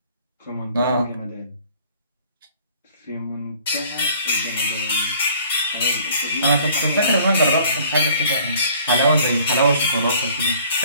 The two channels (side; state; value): both; inverted; correlation -0.55